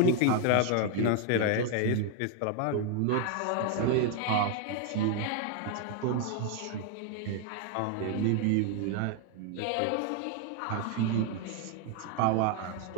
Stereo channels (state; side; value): different; both; correlation 0.00